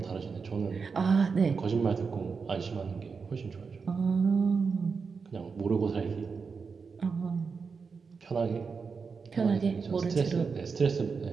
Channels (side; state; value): left; quieter; 5.3 dB